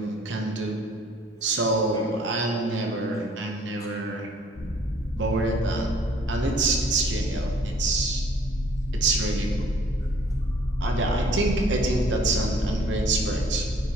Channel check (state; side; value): normal; both; correlation 0.58